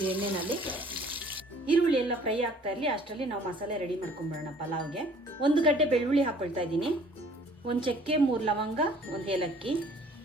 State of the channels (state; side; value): normal; both; correlation 0.54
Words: ಎಣ್ಣೆನಲ್ಲಿ. ಈರುಳ್ಳಿ ಎಲ್ಲ ಫ್ರೈ ಆಗ್ತಾ ಇರಲಿ, ಅಷ್ಟರಲ್ಲಿ ನಾವು ಮಸಾಲೆ ರೆಡಿ ಮಾಡ್ಕೊಂಡ್ಬಿಡೋಣ ಪಲಾವ್ಗೆ. 1 ಗಡ್ಡೆ ಬೆಳ್ಳುಳ್ಳಿ ಹಾಕೊಳ್ತಾ ಇದ್ದೀನಿ, 1 ಚಕ್ಕೆ, 3 ಲವಂಗ, 1 ಏಲಕ್ಕಿ,